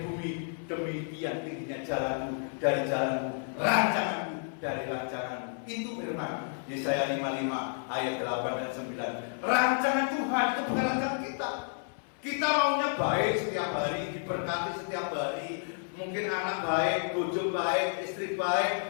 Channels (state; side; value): silent; right; 57 dB below the other